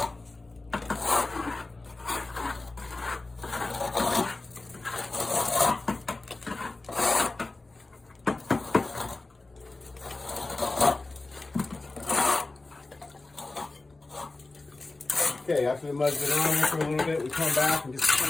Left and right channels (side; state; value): right; quieter; 3.3 dB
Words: Okay, after the mud's been on there for a little bit, we come back and just